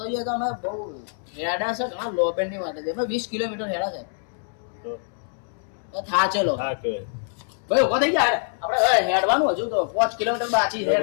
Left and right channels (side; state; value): right; silent; 62 dB below the other